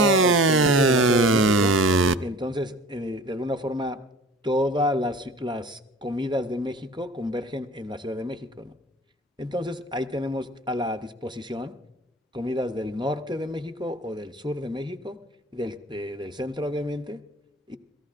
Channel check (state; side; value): normal; both; correlation 0.43